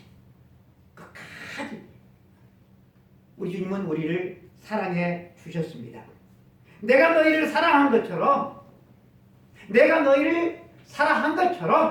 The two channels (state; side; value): identical; both; correlation 1.00